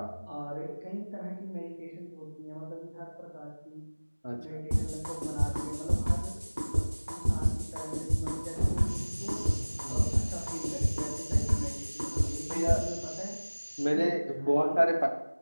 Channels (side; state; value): both; inverted; correlation -1.00